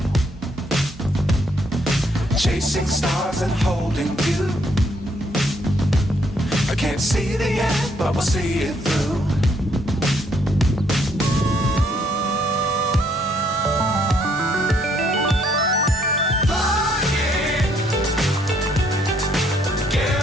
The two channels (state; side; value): normal; both; correlation 0.69